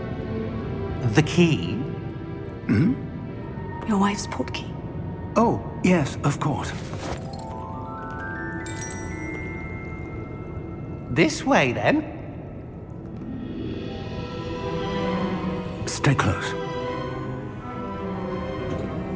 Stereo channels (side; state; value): both; identical; correlation 1.00